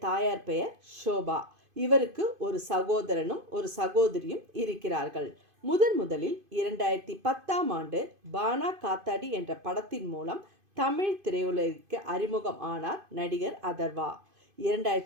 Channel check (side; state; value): left; late; 2.5 ms